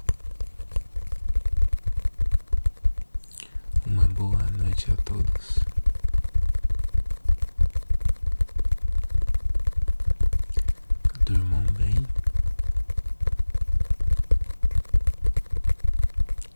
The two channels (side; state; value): both; inverted; correlation -1.00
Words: uma boa noite a todos. Durmam bem